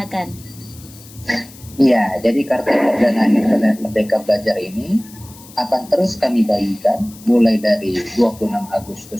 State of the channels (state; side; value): noise; left; hiss, 21 dB below the sound